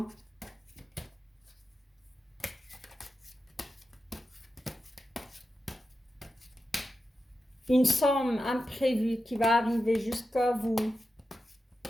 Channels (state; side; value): normal; both; correlation 0.90